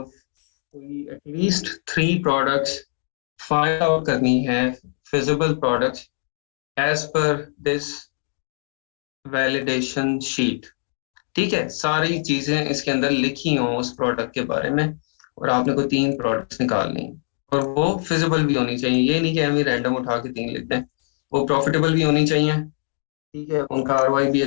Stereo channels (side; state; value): right; silent; digital silence